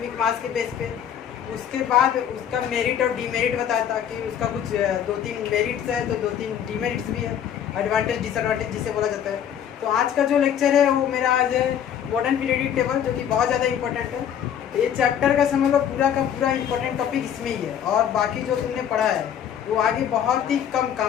मास के बेस पे। उसके बाद उसका मेरिट और डीमेरिट बताया था कि उसका कुछ 2-3 मेरिट्स है तो 2-3 डीमेरिट्स भी है, एडवांटेज डिसएडवांटेज जिसे बोला जाता है। तो आज का जो लेक्चर है वो मेरा आज है मॉडर्न पीरियडिक टेबल, जो कि बहुत ज़्यादा इंपॉर्टेंट है। ये चैप्टर का समझ लो पूरा का पूरा इंपॉर्टेंट टॉपिक इसमें ही है, और बाकी जो तुमने पढ़ा है वो आगे बहुत ही कम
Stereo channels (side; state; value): right; quieter; 9.3 dB